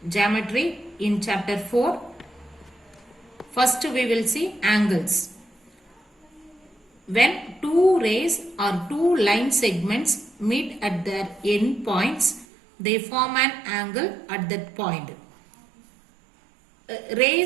geometry in chapter 4. First we will see angles. When two rays or two line segments meet at their end points, they form an angle at that point.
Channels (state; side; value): drops out; left; at 12.5 s